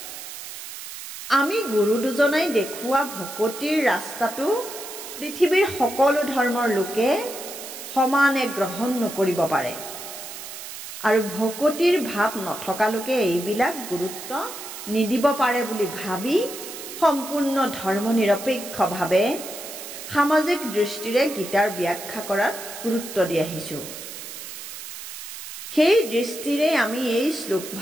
আমি গুৰু দুজনাই দেখুওৱা ভকতিৰ ৰাস্তাটো পৃথিৱীৰ সকলো ধৰ্মৰ লোকে সমানে গ্ৰহণ নকৰিব পাৰে, আৰু ভকতিৰ ভাৱ নথকা লোকে এইবিলাক গুৰুত্ব নিদিব পাৰে বুলি ভাবি সম্পূৰ্ণ ধৰ্মনিৰপেক্ষভাৱে সামাজিক দৃষ্টিৰে গীতাৰ ব্যাখ্যা কৰাত গুৰুত্ব দি আহিছোঁ। সেই দৃষ্টিৰে আমি এই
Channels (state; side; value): noise; right; hiss, 11 dB below the sound